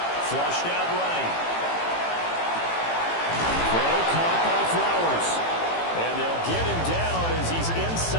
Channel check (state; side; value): late; right; 18 ms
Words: Flushed out right. Throw caught by Flowers. And they'll get him down as he's